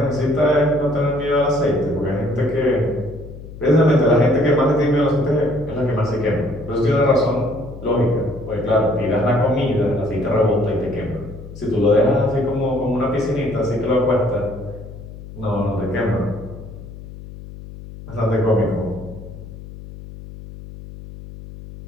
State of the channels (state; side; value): noise; left; hum, 14 dB below the sound